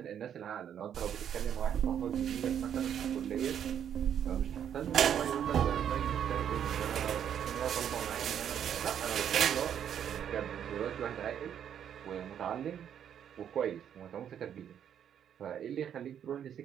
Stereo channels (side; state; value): left; quieter; 9.1 dB